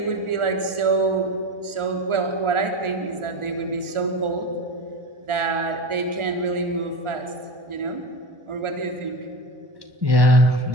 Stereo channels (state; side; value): late; left; 1.4 ms